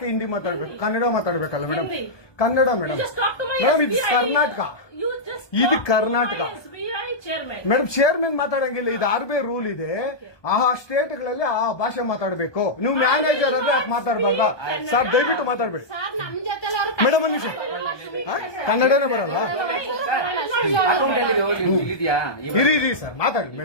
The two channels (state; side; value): late; right; 1.2 ms